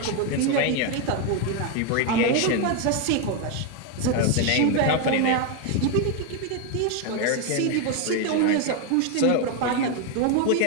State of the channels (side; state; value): both; different; correlation 0.01